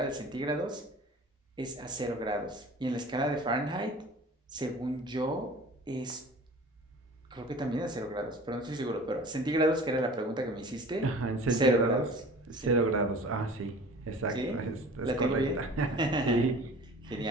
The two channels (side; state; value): both; normal; correlation 0.43